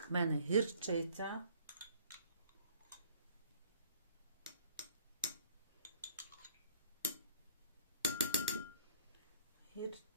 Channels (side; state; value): both; inverted; correlation -0.58